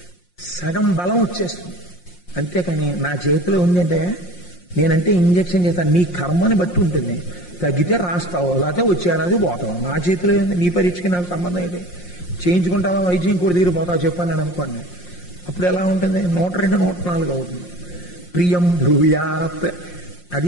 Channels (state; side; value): late; right; 5.6 ms